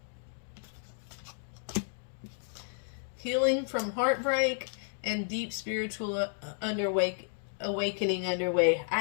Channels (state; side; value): silent; right; digital silence